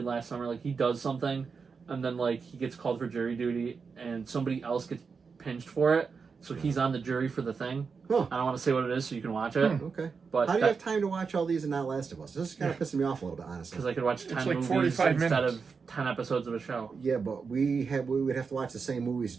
Last Summer. Like he does something, and then like he gets called for jury duty, and somebody else gets pinched for it. So he's on the jury for the thing. Huh. I don't want to say what it is, so you can watch it. Okay. But how do you have time to watch all these and not Last of Us? This is kind of pissing me off a little bit, honestly. Because I could watch 10 It's like movies 45 instead minutes. of 10 episodes of a show. Yeah, but we would have to watch the same movies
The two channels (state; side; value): quieter; left; 5.3 dB